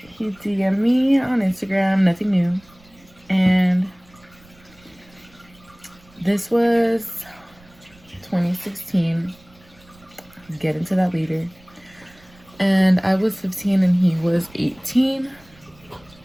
he DM'd me on Instagram, nothing new, and this was 2016. Get into that later. And I was 15 and he was 18,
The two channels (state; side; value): noise; right; rumble, 28 dB below the sound